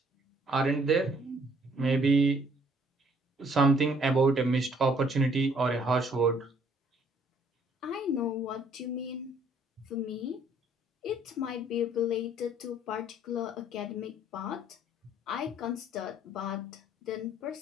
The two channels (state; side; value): normal; both; correlation 0.62